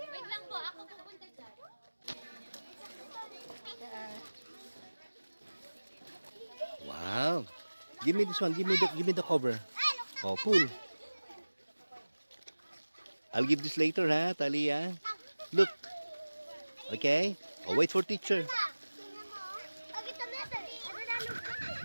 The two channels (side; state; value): both; inverted; correlation -1.00